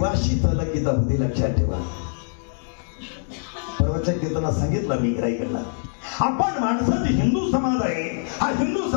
तलकीत होती, लक्षात ठेवा. परवाच्या कीर्तनात सांगितलं मी इकडला, आपण माणसाची हिंदू समाज आहे. हा हिंदू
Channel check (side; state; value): right; silent; digital silence